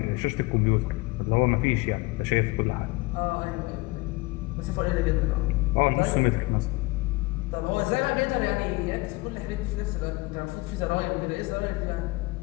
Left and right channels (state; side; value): quieter; right; 23.5 dB